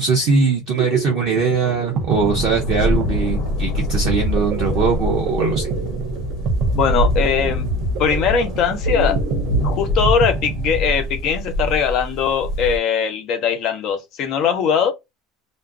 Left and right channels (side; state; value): both; normal; correlation 0.38